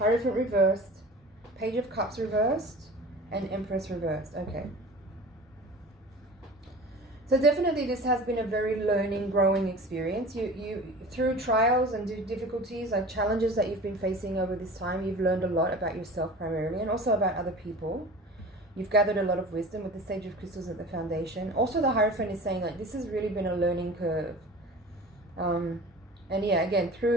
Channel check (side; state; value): both; normal; correlation 0.39